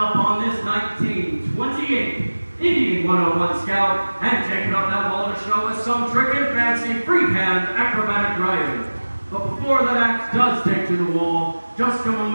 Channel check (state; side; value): inverted; both; correlation -1.00